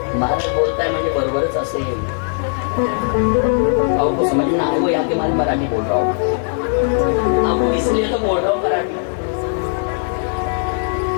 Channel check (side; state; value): right; silent; digital silence